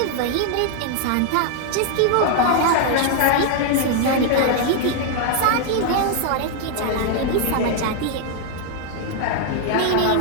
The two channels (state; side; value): different; both; correlation 0.00